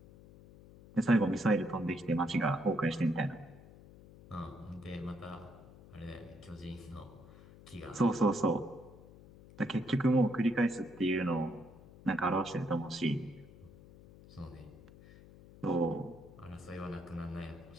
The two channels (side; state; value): left; noise; hum, 20 dB below the sound